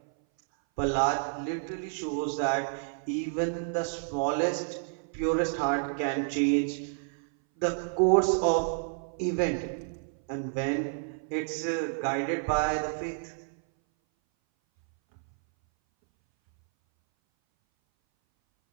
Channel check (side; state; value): left; silent; 58 dB below the other